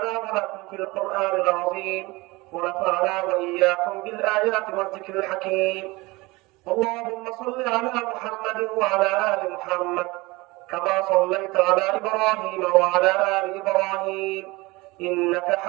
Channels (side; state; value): left; quieter; 22.6 dB